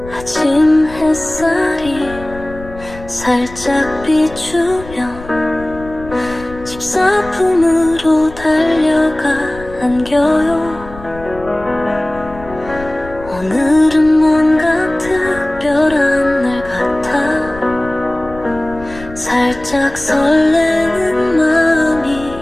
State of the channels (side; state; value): left; noise; rumble, 16 dB below the sound